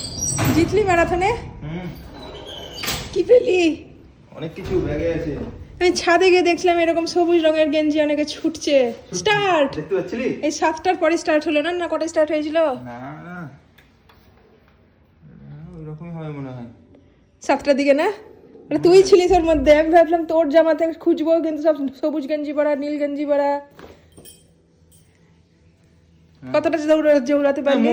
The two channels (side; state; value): both; identical; correlation 1.00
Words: জিতলি ম্যারাথনে? কি পেলি? অনেক কিছু ব্যাগে আছে। আমি ছাদে গিয়ে দেখছিলাম এরকম সবুজ রঙের গেঞ্জি অনেকে ছুটছে। স্টার্ট দেখতে পাচ্ছিলি? এই 7টার পরে স্টার্ট হলো না? না কটা স্টার্ট হয়েছিল? না না, ওইরকমই হবে মনে হয়। 7টার দিকে না? মানে তুই ছিলিস ওর মধ্যে। আমি ভাবলাম তোর জামাতে খুঁজবো, কিন্তু সব সবুজ গেঞ্জি পরা, নীল গেঞ্জি পরা। কতটা জৌড়াতে পারলি?